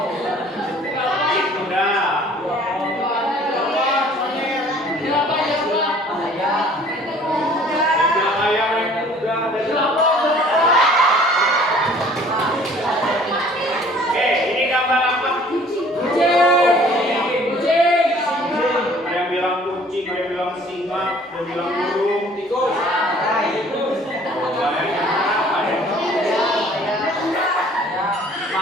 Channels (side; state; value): both; normal; correlation 0.54